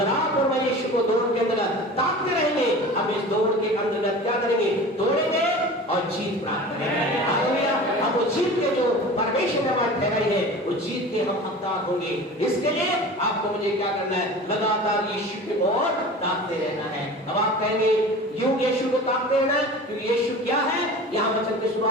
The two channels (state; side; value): normal; both; correlation 0.37